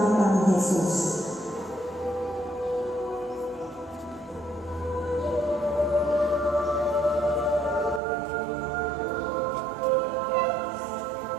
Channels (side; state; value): left; drops out; at 8.0 s